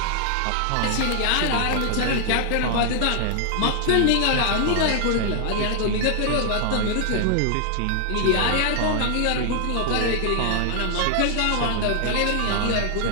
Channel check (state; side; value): different; both; correlation 0.00